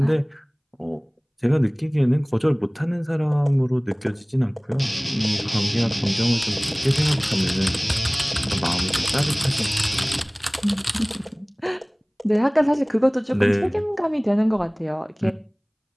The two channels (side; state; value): both; identical; correlation 1.00